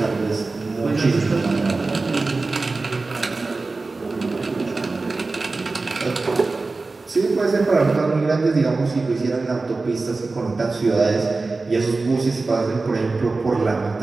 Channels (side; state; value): left; quieter; 3.6 dB